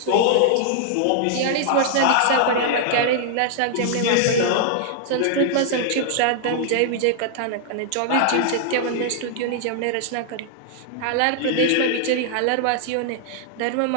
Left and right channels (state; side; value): different; both; correlation -0.01